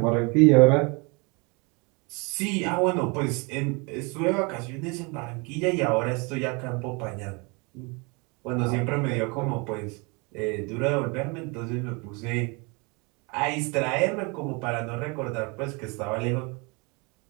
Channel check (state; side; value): quieter; left; 29.7 dB